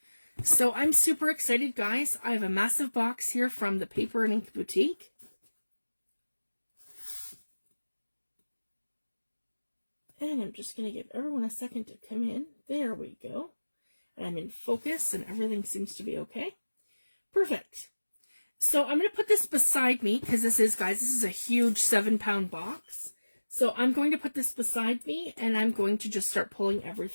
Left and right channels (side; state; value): both; inverted; correlation -1.00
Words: So I'm super excited, guys. I have a massive box here from the Paper and Ink Boutique. And I'm just going to give everyone a second to come in. There we go. And I'm in focus and everything seems to be okay. Perfect. So I'm going to put this beside me because this is a huge 7-pound box. So I'm going to put this beside me and I'm going to just start pulling